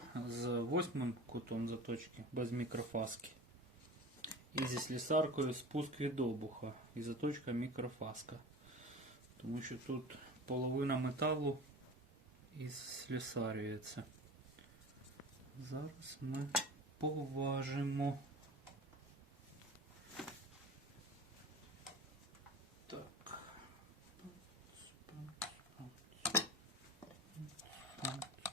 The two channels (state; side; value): normal; both; correlation 0.34